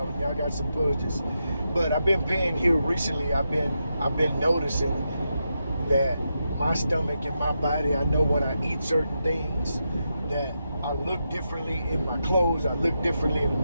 got some budgets. But I've been paying here recently. I've been noticing that my stomach and my body, I know when I eat certain things that I look differently in my clothes, I look differently in the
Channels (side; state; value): both; inverted; correlation -0.86